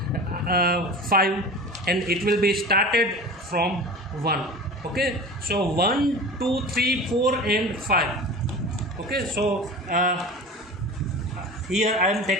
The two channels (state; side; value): normal; both; correlation 0.35